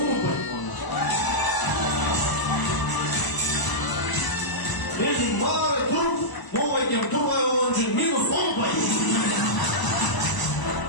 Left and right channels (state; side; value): late; right; 1.0 ms